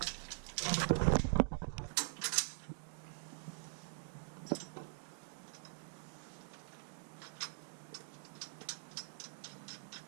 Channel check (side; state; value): left; silent; digital silence